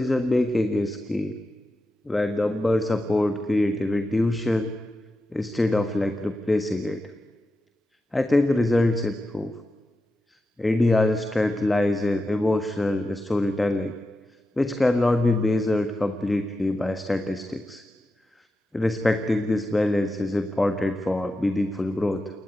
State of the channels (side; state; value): both; normal; correlation 0.90